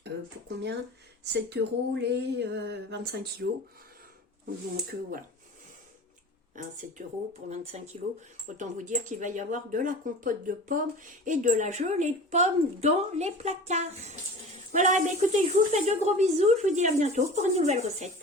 Pour combien? 7 € les 25 kilos. Donc voilà. 7 € pour 25 kilos. Autant vous dire qu'il va y avoir de la compote de pommes et de la gelée de pommes dans les placards. Voilà, écoutez, je vous fais de gros bisous. Je vous dis à bientôt pour une nouvelle recette.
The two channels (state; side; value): normal; both; correlation 0.37